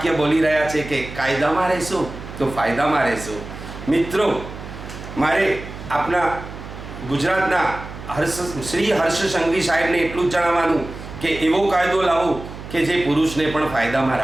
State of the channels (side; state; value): right; noise; hum, 12 dB below the sound